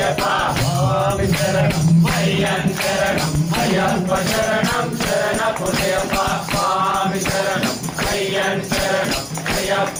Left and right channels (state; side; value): identical; both; correlation 1.00